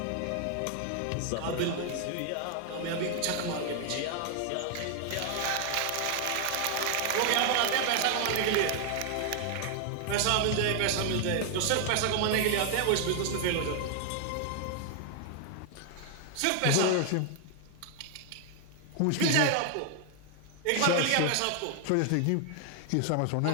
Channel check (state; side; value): different; both; correlation 0.00